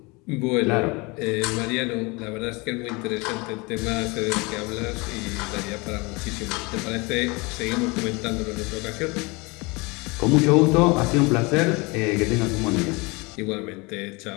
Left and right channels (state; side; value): quieter; right; 26.5 dB